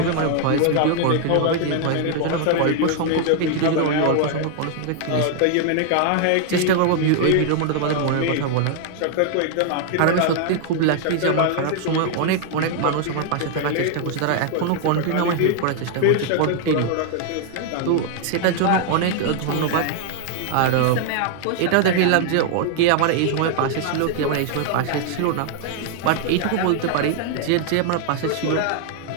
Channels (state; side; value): different; both; correlation 0.00